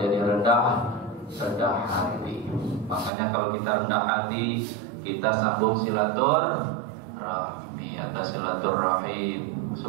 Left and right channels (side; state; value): left; drops out; at 3.1 s